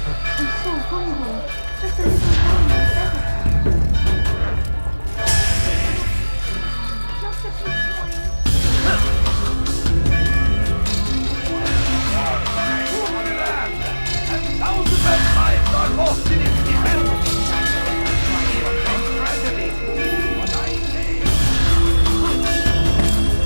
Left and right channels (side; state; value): both; inverted; correlation -1.00